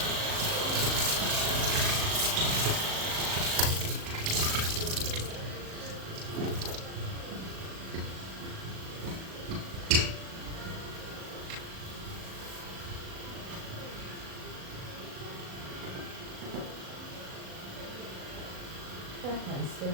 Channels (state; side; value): late; left; 37 ms